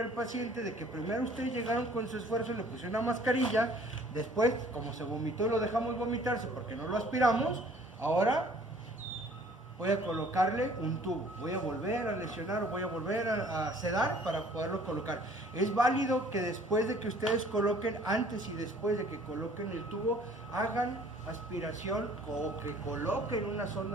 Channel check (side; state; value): both; normal; correlation 0.55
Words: el paciente de que primero ustedes llegaron con su esfuerzo, le pusieron una mascarilla, después, como se vomitó, lo dejamos vomitarse porque no lo aspiramos. Ahora voy a colocarle un tubo, voy a volver a lesionar o voy a volver a sedar para poderlo colocar. Es válido que después de que ustedes coloquen, antes y después de que coloquen el tubo, hagan aspiración o que coloquen una